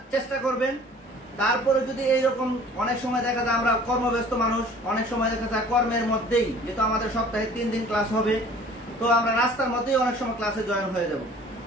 চেষ্টা করবেন। তারপরে যদি এইরকম, অনেক সময় দেখা যায় আমরা কর্মব্যস্ত মানুষ, অনেক সময় দেখা যায় কর্মের মধ্যেই, যেহেতু আমাদের সপ্তাহে 3 দিন ক্লাস হবে, তো আমরা রাস্তার মধ্যেই অনেক সময় ক্লাসে জয়েন হয়ে যাব।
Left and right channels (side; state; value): both; normal; correlation 0.50